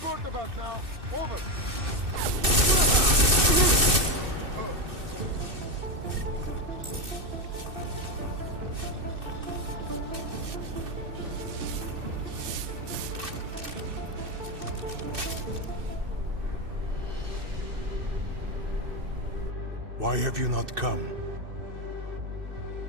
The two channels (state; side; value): late; left; 2.6 ms